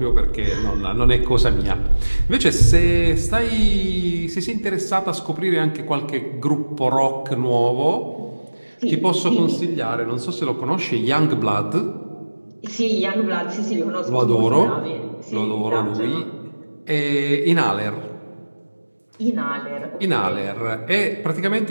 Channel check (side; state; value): both; inverted; correlation -1.00